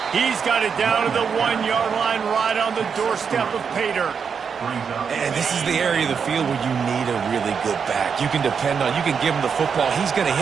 He's got it down to the 1-yard line right on the doorstep of Pater. And this is the area of the field where you need a really good back. You can depend on, you can give him the football. He's going to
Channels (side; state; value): left; quieter; 6.4 dB